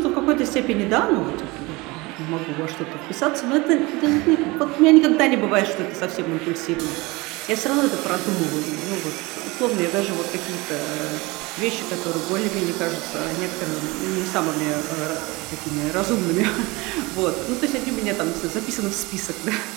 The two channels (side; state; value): left; quieter; 23.5 dB